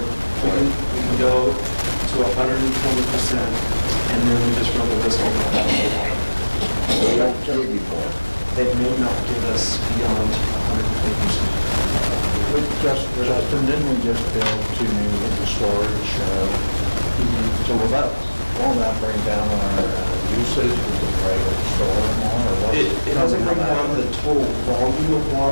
We can go to 120%, and then we just run the risk over that. They don't give you more. They may not give us beyond 120%. Justin, didn't we just build 2 new winter storage? So will that bring down our usage? Is it right to store more or what? It doesn't bring down the total volume of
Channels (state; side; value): inverted; both; correlation -1.00